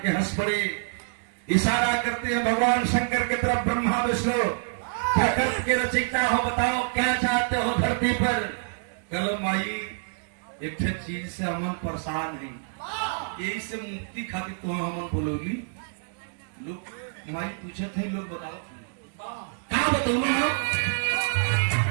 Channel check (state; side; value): silent; left; digital silence